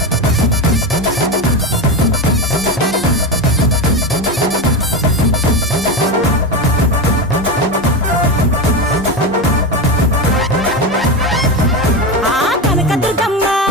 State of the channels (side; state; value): both; normal; correlation 0.17